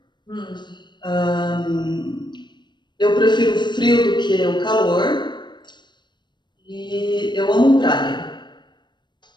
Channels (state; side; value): late; right; 0.22 ms